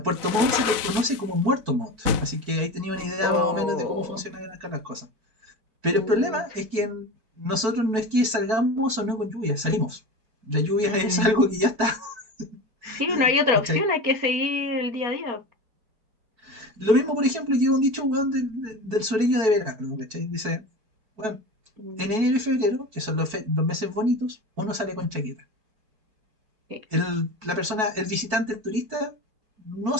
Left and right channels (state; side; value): late; left; 4.6 ms